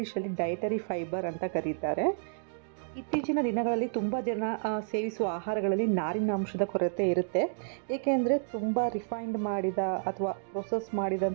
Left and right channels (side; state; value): left; silent; digital silence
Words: ಡಯಟರಿ ಫೈಬರ್ ಅಂತ ಕರೀತಾರೆ. ಇತ್ತೀಚಿನ ದಿನಗಳಲ್ಲಿ ತುಂಬಾ ಜನ ಸೇವಿಸುವ ಆಹಾರಗಳಲ್ಲಿ ನಾರಿನ ಅಂಶದ ಕೊರತೆ ಇರುತ್ತೆ. ಏಕೆಂದ್ರೆ ತುಂಬಾ ರಿಫೈನ್ಡ್ ಮಾಡಿದ ಅಥವಾ ಪ್ರೊಸೆಸ್